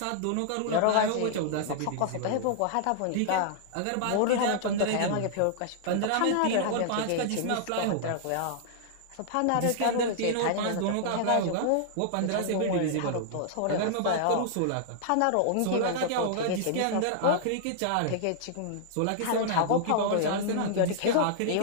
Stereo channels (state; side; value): different; both; correlation -0.01